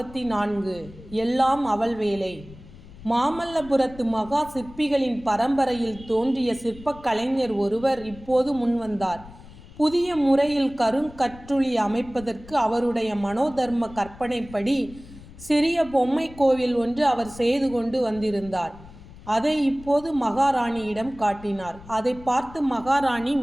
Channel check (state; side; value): noise; left; rumble, 19 dB below the sound